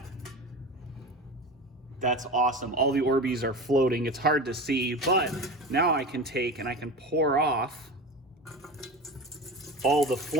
That's awesome. All the Orbeez are floating. It's hard to see, but now I can take and I can pour off all the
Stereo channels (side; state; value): both; normal; correlation 0.29